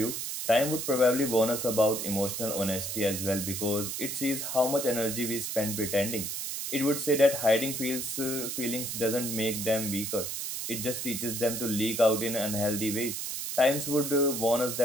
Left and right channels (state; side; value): noise; right; hiss, 4 dB below the sound